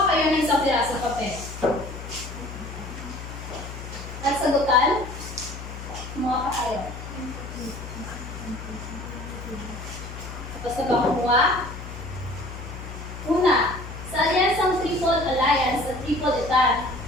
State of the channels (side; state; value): left; noise; hum, 11 dB below the sound